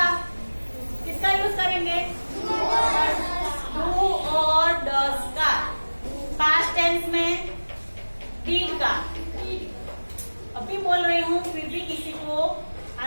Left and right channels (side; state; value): both; inverted; correlation -1.00